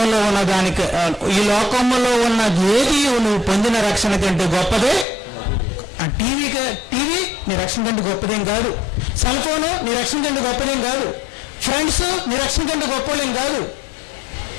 ఉన్న ఈ లోకంలో ఉన్న ఏది నువ్వు పొందిన రక్షణ కంటే గొప్పదే. ఆ టీవీ నీ రక్షణ కంటే గొప్పదేం కాదు. సెల్ ఫోను నీ రక్షణ కంటే గొప్పదేం కాదు. ఫ్రెండ్స్ నీ రక్షణ కంటే గొప్పదేం కాదు.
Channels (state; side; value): drops out; right; at 5.1 s